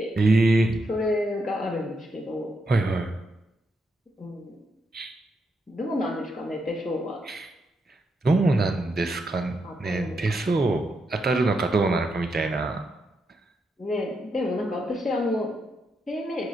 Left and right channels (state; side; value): normal; both; correlation 0.82